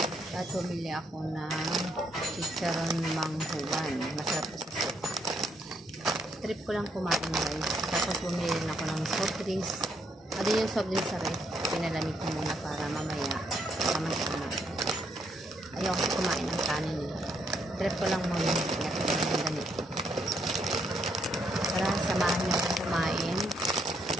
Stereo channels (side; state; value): both; normal; correlation 0.74